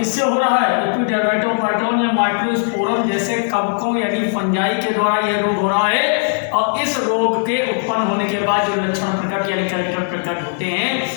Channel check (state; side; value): silent; right; digital silence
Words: हो रहा है? एपिडर्मेटोफाइटॉन या माइक्रोस्पोरम जैसे कवकों यानी फंजाई के द्वारा यह रोग हो रहा है। और इस रोग के उत्पन्न होने के बाद जो लक्षण प्रकट यानी कैरेक्टर प्रकट होते हैं